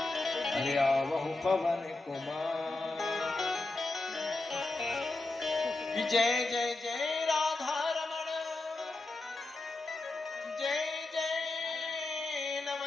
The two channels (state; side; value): quieter; right; 3.1 dB